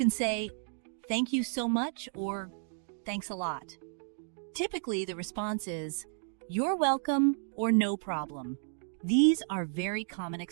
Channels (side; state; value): left; silent; digital silence